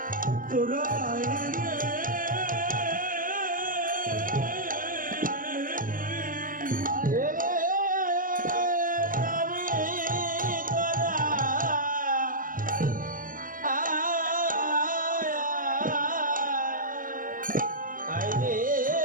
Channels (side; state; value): left; late; 0.40 ms